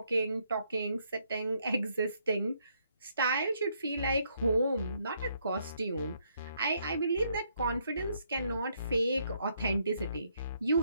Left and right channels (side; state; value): both; inverted; correlation -0.72